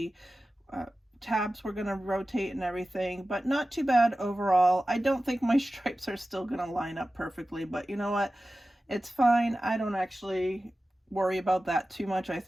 uh, tabs were going to rotate and everything, but not too bad overall. I don't think my stripes are still going to line up perfectly, but you know what? It's fine. I don't actually worry about that too much. I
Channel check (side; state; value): both; normal; correlation 0.95